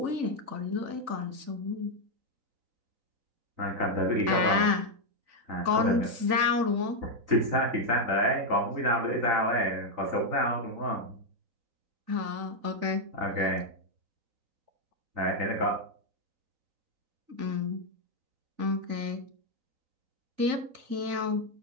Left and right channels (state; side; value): late; left; 3.4 ms